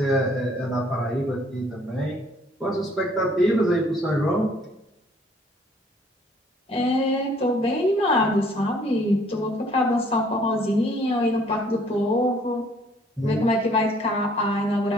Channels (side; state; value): both; normal; correlation 0.60